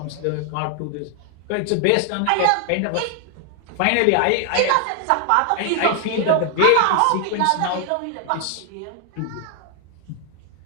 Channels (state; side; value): different; both; correlation 0.00